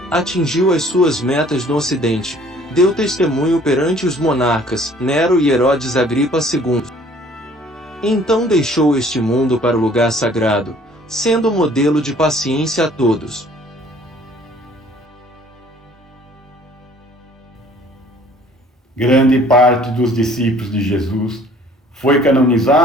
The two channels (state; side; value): normal; both; correlation 0.55